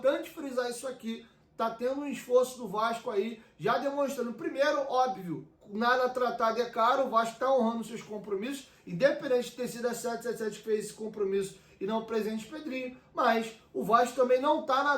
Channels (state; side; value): identical; both; correlation 1.00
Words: frisar isso aqui. Tá tendo um esforço do Vasco aí, já demonstrando, primeiro, óbvio, nada tratado é caro, o Vasco está honrando seus compromissos, independente de ter sido a 777 que fez esse compromisso e não o presidente Pedrinho, mas o Vasco também não está